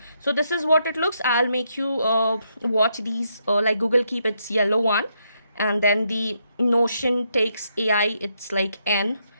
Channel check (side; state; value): both; inverted; correlation -0.77